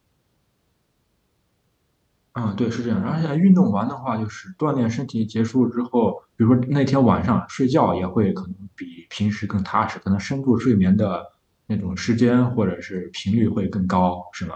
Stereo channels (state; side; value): identical; both; correlation 1.00